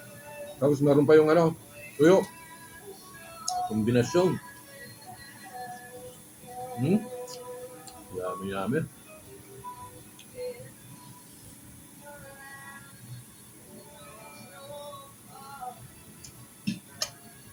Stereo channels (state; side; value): identical; both; correlation 1.00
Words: Tapos meron pa yung ano, tuyo. Kombinasyon. Yummy, yummy.